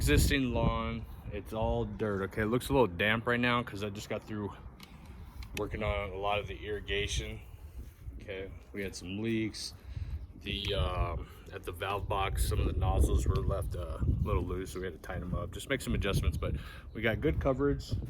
lawn, it's all dirt. Okay, it looks a little damp right now because I just got through working on a lot of the irrigation. Okay, we had some leaks. At the valve box, some of the nozzles were left a little loose, so we had to tighten them up, just make some adjustments. But we got good coverage,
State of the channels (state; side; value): identical; both; correlation 1.00